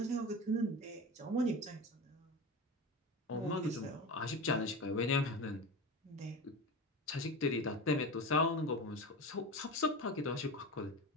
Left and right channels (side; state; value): both; normal; correlation 0.27